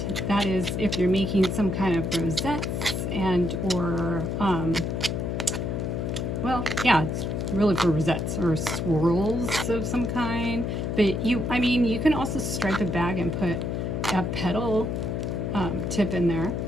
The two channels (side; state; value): left; noise; hum, 1 dB below the sound